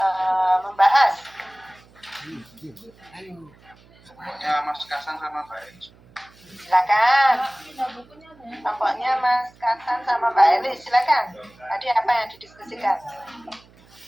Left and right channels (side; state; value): right; noise; hum, 27 dB below the sound